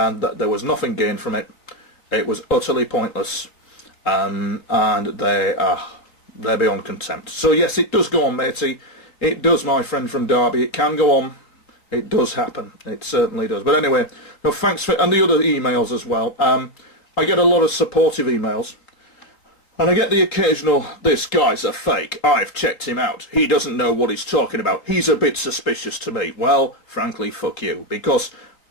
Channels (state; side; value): late; right; 3.7 ms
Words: there was nothing gained from it. It was utterly pointless. And they're beyond contempt. So yes, it does go on, matey. It does, my friend from Derby. It can go on. It does happen. It certainly does. But anyway, no, thanks for... And the other emails as well. I get a lot of supportive emails. And I get the occasional, this guy's a fake. I've checked him out. He doesn't know what he's talking about. He's a bit suspicious to me. Well, frankly, fuck you. Because